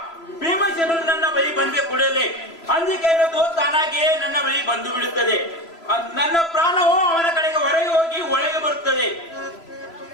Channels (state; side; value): late; right; 3.0 ms